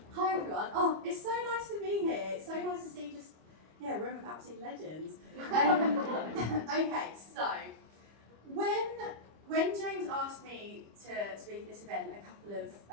Hi everyone. Oh, it's so nice to be here. It's so nice to see a room of absolute legends. Okay, so when James asked me to speak at this event a couple of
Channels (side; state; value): left; late; 25 ms